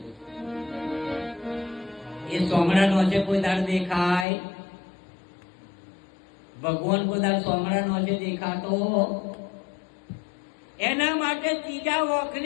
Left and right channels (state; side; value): drops out; right; at 4.2 s